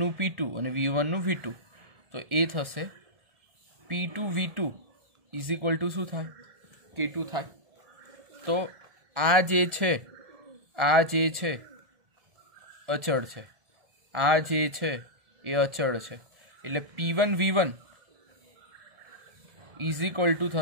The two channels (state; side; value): late; left; 1.7 ms